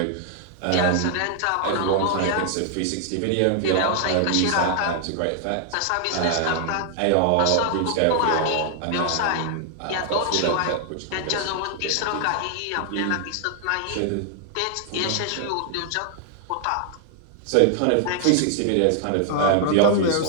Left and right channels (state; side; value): different; both; correlation 0.00